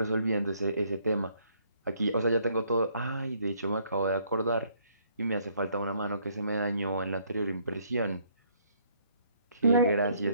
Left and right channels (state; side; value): inverted; both; correlation -0.66